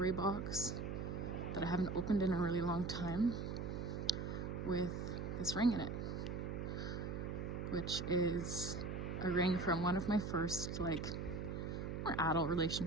box that I haven't opened in a really long time with this ring in it, which is a ring from one of my first more adult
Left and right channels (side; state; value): right; noise; hum, 3 dB below the sound